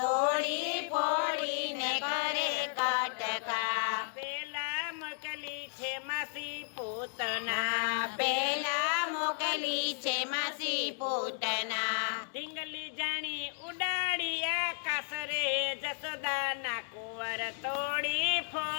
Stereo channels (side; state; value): right; silent; 55 dB below the other